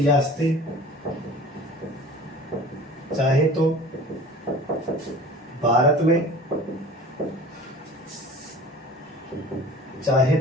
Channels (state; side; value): normal; both; correlation 0.42